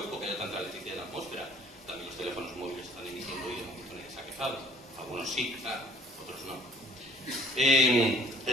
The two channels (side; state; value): both; normal; correlation 0.54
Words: que haya tanta electricidad en la atmósfera? También los teléfonos móviles están emitiendo y de momento nadie se ha quejado. Algunos sí, claro, otros no.